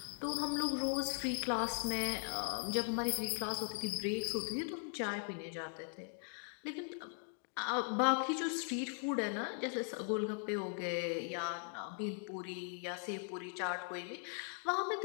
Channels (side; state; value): right; silent; 51 dB below the other